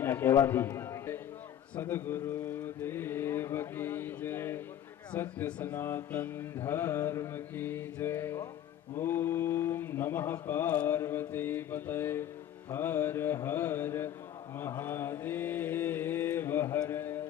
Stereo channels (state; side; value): quieter; right; 10.9 dB